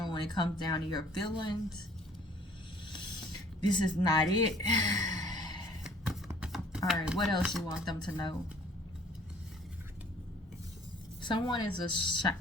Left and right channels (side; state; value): both; normal; correlation 0.54